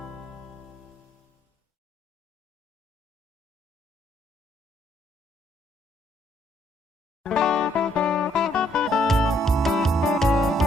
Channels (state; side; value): normal; both; correlation 0.69